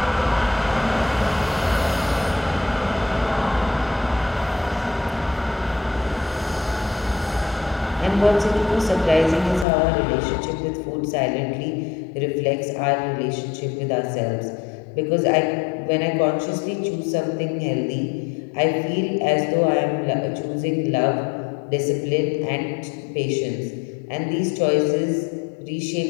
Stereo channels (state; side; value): drops out; right; at 9.7 s